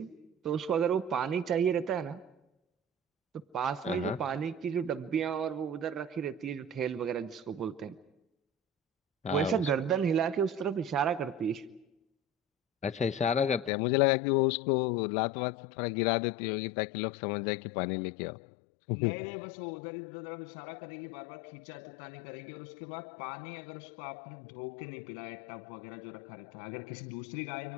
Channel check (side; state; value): right; drops out; at 13.7 s